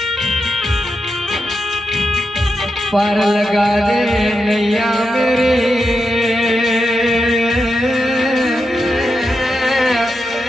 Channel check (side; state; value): both; normal; correlation 0.87